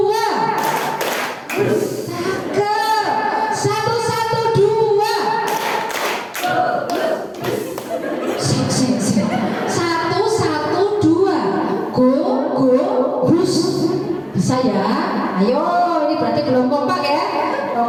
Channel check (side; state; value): both; identical; correlation 1.00